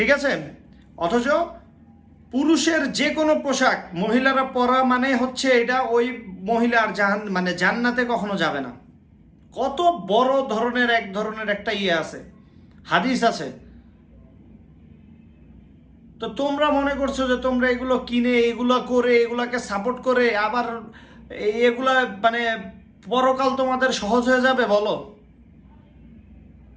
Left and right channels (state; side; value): identical; both; correlation 1.00